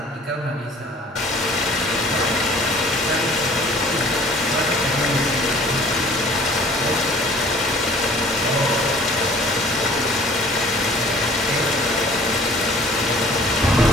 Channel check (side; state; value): both; normal; correlation 0.51